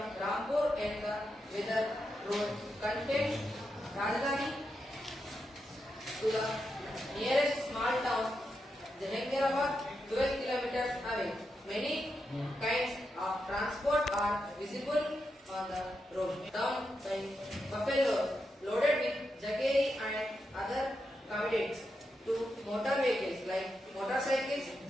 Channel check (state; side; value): normal; both; correlation 0.86